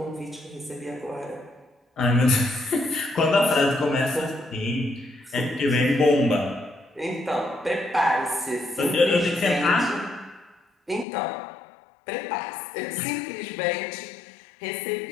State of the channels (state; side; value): drops out; right; at 11.1 s